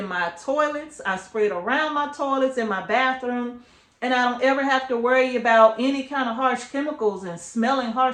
my toilets. I spray it around my toilets, in my bathroom. And I don't ever have to worry about any kind of harsh chemicals and smelling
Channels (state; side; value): identical; both; correlation 1.00